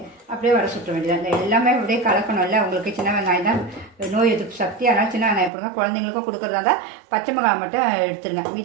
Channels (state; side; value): drops out; left; at 5.5 s